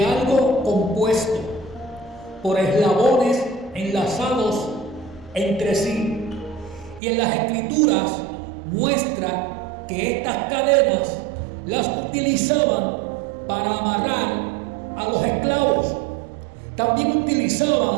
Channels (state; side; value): drops out; left; at 7.0 s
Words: algo compuesto por eslabones enlazados entre sí. Y en las escrituras muestra que estas cadenas las utilizaban para amarrar a los esclavos. También